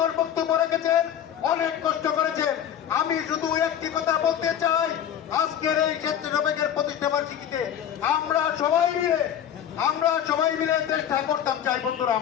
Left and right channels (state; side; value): quieter; right; 9.7 dB